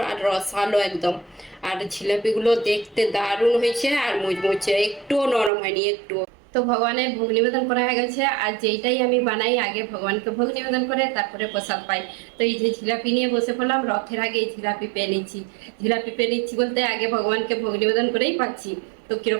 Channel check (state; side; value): drops out; left; at 5.5 s